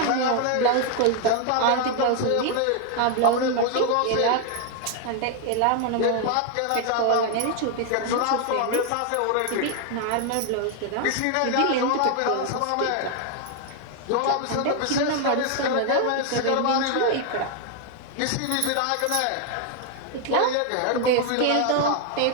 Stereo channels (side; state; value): both; different; correlation 0.00